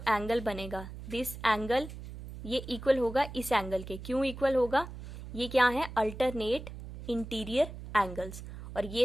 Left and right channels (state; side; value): noise; right; hum, 12 dB below the sound